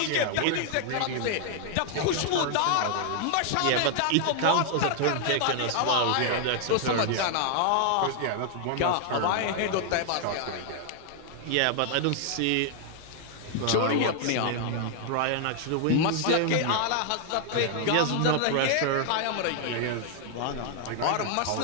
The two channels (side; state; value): both; different; correlation 0.00